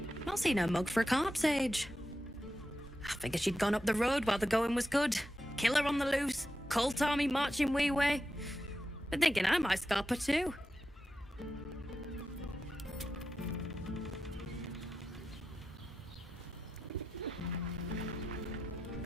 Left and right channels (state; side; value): normal; both; correlation 0.90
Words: Not seen her mug for a carp's age. I figured she'd gone up the road while the going was good. Killer on the loose, cult army marching wee way. Been thinking I might scalp her too.